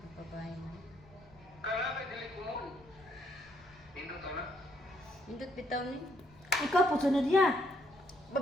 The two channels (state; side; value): noise; left; rumble, 25 dB below the sound